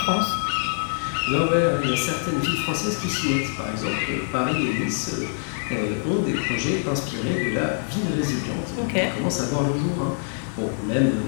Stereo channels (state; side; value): silent; right; 60 dB below the other